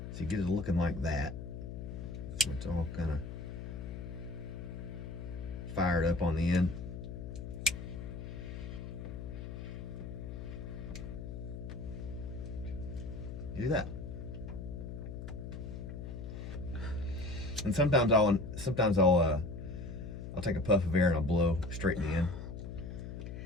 you get it looking like that. So it's all kind of fired up on the end. You do that. And sometimes I'll take a puff of air and I'll blow straight in the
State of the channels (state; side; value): noise; left; hum, 8 dB below the sound